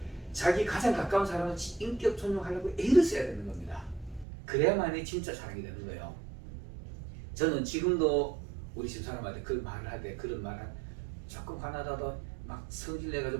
자기 가장 가까운 사람은 인격 존중하려고 애를 써야 되는 겁니다. 그래야만이 진짜 사랑이 되는 거예요. 저는 지금도 우리 집사람한테 그 말을 할 때 그런 말을 조금 화나다도 막 성질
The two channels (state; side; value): drops out; left; at 4.2 s